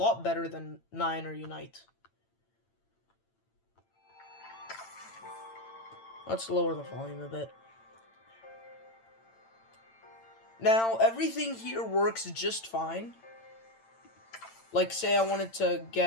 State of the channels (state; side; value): late; right; 8.9 ms